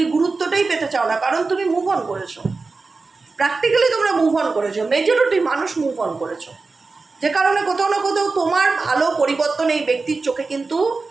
গুরুত্বটাই পেতে চাও না, কারণ তুমি মুভ অন করেছো। প্র্যাকটিক্যালি তোমরা মুভ অন করেছো, মেজরিটি মানুষ মুভ অন করেছো, যে কারণে কোথাও না কোথাও তোমার ভালো পরিবর্তন এই ব্যক্তির চোখে কিন্তু,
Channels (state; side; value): quieter; left; 4.0 dB